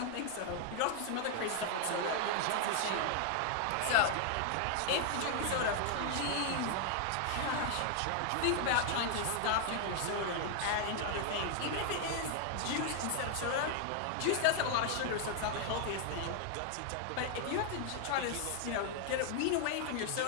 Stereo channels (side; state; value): both; different; correlation 0.00